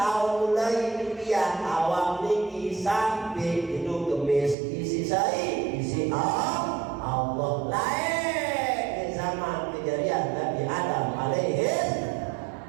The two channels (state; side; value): drops out; left; at 4.5 s